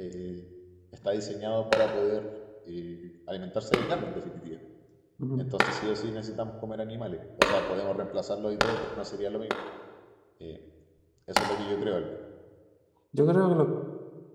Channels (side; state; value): both; identical; correlation 1.00